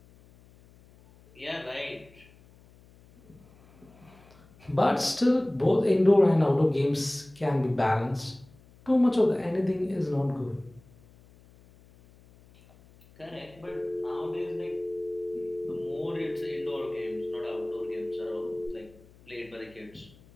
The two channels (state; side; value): noise; left; hum, 26 dB below the sound